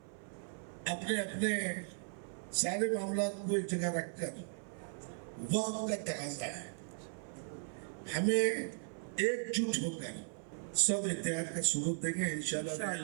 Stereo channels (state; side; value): silent; left; 53 dB below the other